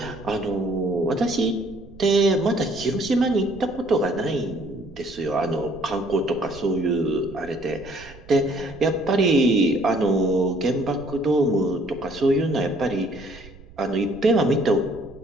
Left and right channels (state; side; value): noise; right; rumble, 20 dB below the sound